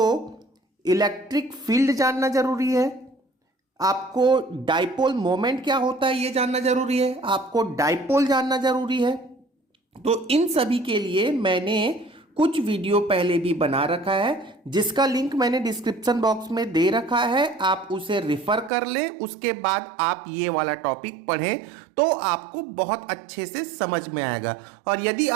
इलेक्ट्रिक फील्ड जानना जरूरी है, आपको डाइपोल मोमेंट क्या होता है ये जानना जरूरी है, आपको डाइपोल जानना जरूरी है। तो इन सभी के लिए मैंने कुछ वीडियो पहले भी बना रखा है, जिसका लिंक मैंने डिस्क्रिप्शन बॉक्स में दे रखा है। आप उसे रिफर कर लें, उसके बाद आप ये वाला टॉपिक पढ़ें तो आपको बहुत अच्छे से समझ में आएगा। और यदि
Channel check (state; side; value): drops out; left; at 18.7 s